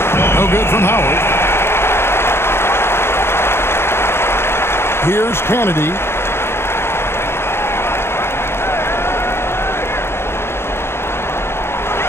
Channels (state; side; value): late; right; 0.12 ms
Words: No good from Howard. Here's Kennedy.